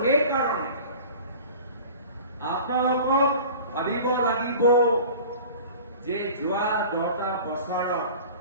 সেইকাৰণে আপোনালোকক ভাবিব লাগিব যে যোৱা 10টা বছৰত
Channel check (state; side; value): inverted; both; correlation -0.41